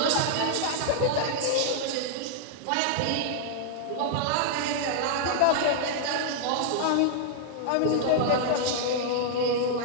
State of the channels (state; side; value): different; both; correlation -0.01